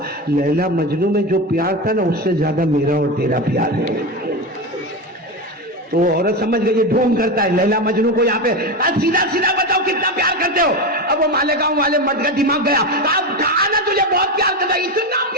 لیلا مجنوں میں جو پیار تھا نا اس سے زیادہ میرا اور تیرا پیار ہے. تو عورت سمجھ گئی یہ ڈھونگ کرتا ہے لیلا مجنوں کو یہاں پہ, سیدھا سیدھا بتاؤ کتنا پیار کرتے ہو. اب وہ مالیگاؤں والے مرد کا دماغ گیا, کہا نا تجھے بہت پیار کرتا, اتنا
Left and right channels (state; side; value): normal; both; correlation 0.17